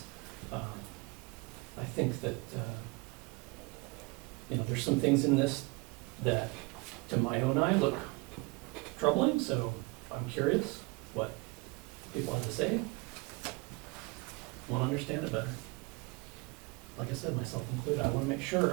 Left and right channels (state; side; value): quieter; left; 26.7 dB